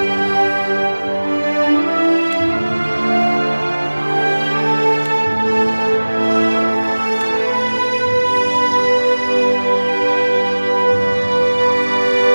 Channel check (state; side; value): inverted; both; correlation -1.00